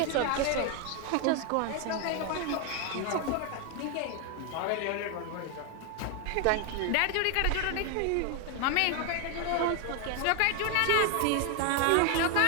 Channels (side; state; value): both; different; correlation 0.01